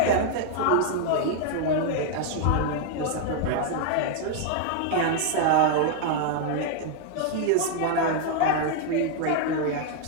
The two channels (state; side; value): different; both; correlation 0.00